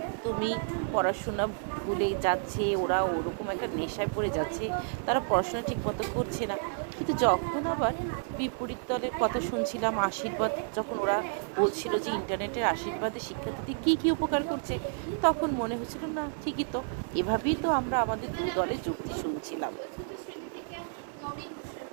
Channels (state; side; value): silent; left; digital silence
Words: পড়াশোনা ভুলে যাচ্ছে, ওরা ওরকম একটা নেশায় পড়ে যাচ্ছে, তারা পড়াশোনা ঠিক মতো করছে না। কিন্তু যখন আবার বিপরীত দলের কথা শুনছিলাম, আশীর্বাদ যখন ওরা বলছিল যে ইন্টারনেটের আশীর্বাদে শিক্ষার্থীদের কী কী উপকার করছে, তখন মনে হচ্ছিল না ঠিকই তো, এভাবেই তো আমরা আমাদের দু দলের যুক্তি শুনছিলাম।